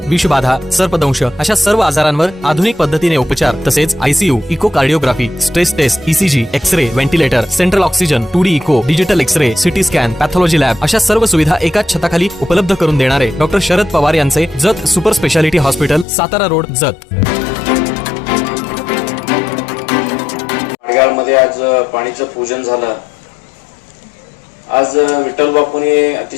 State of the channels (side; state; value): right; drops out; at 16.1 s